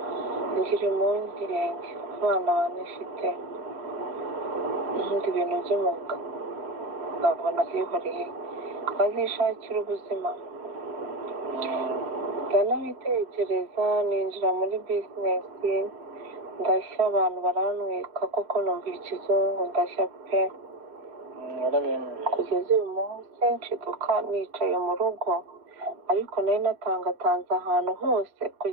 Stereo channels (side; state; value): left; late; 3.1 ms